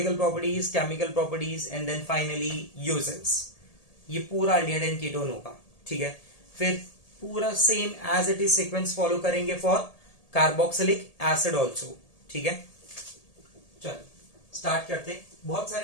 properties, chemical properties and then finally uses. ये पूरा अल्डिहाइड एंड कीटोन होगा। ठीक है, फिर पूरा same as it is sequence follow करेंगे फॉर कार्बोक्सिलिक एसिड ऑल्सो। ठीक है, चल स्टार्ट करते हैं। बहुत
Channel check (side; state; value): right; late; 1.8 ms